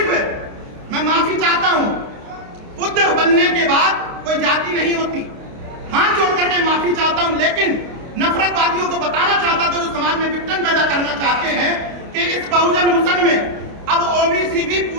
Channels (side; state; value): left; late; 29 ms